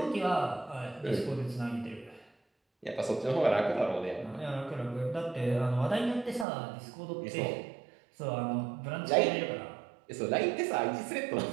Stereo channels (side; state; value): left; drops out; at 6.5 s